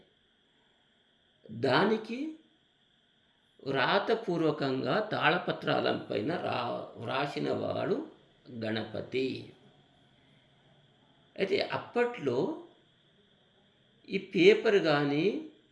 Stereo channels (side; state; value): both; identical; correlation 1.00